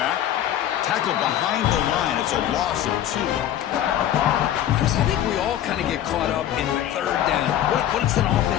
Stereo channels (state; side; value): quieter; right; 11.5 dB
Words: Tackle behind the line. It's a loss of 2. Chris, I think we all kind of get caught up in third down. What's an